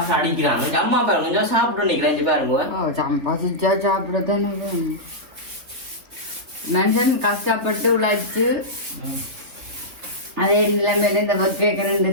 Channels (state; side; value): late; left; 3.2 ms